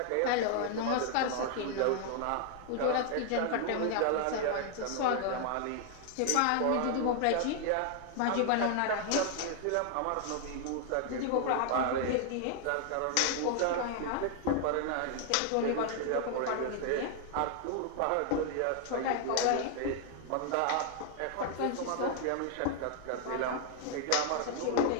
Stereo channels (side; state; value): both; different; correlation 0.00